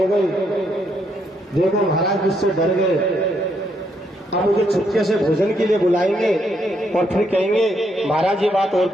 गए, देखो महाराज मुझसे डर गए, अब मुझे छुपके से भोजन के लिए बुलाएंगे और फिर कहेंगे महाराज ये बात और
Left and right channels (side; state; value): both; normal; correlation 0.75